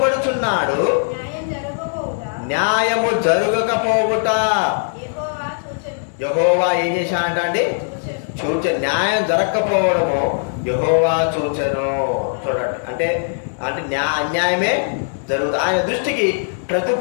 న్యాయము జరగకపోవుట యెహోవా ఏం చేశాడంట అండి? న్యాయం జరగకపోవడము యెహోవా చూచెను. చూడండి, అంటే అన్యాయమే జరుగుతుంది. ఆయన దృష్టికి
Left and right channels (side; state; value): right; silent; 66 dB below the other